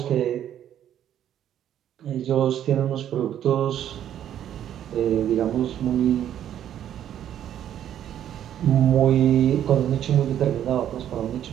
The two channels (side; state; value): left; quieter; 10.6 dB